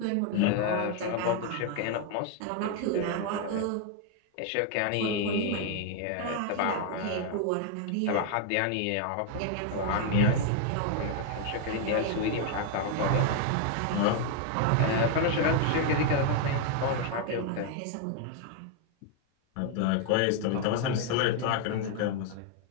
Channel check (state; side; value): different; both; correlation 0.00